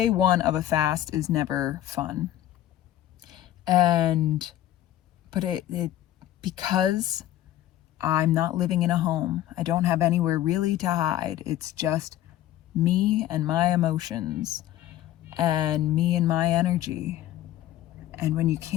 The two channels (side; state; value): right; quieter; 13.1 dB